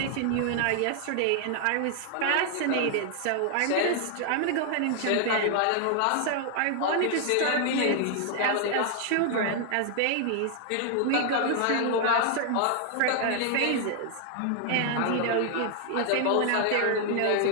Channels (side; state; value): both; different; correlation 0.00